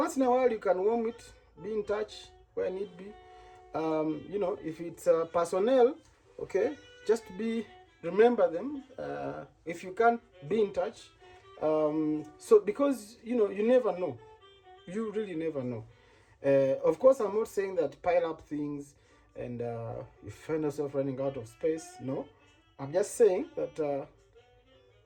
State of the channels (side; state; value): both; identical; correlation 1.00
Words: in a while you can warm it, be in touch where need be. If it's personnel, okay, just remember them. If you can't, be in touch. So because you never know, you really never know. Of course, I'm not saying that pile up things and you find yourself running out of space. No, I'm just saying that